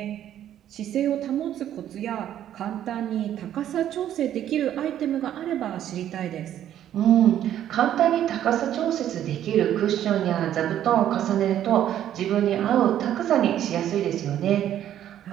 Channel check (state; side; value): quieter; left; 11.1 dB